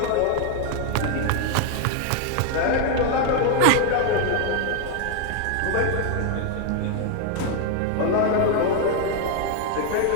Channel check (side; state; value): both; different; correlation 0.00